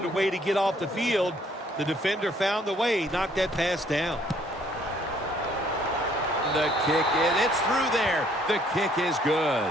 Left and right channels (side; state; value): both; normal; correlation 0.63